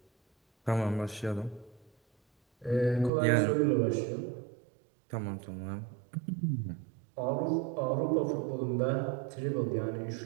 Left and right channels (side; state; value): left; drops out; at 3.1 s